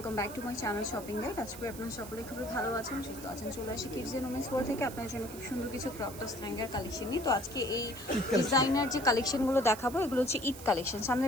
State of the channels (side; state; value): right; noise; hiss, 15 dB below the sound